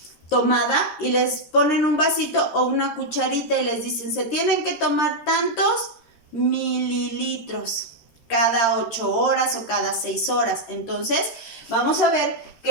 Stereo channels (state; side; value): late; right; 13 ms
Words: tomada y les ponen un vasito o una cucharita y les dicen, se tienen que tomar tantos mililitros cada 8 horas o cada 6 horas. Entonces, vamos a ver